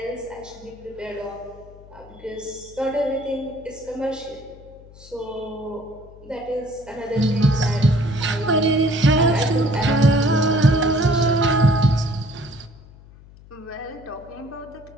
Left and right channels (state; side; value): noise; left; hum, 21 dB below the sound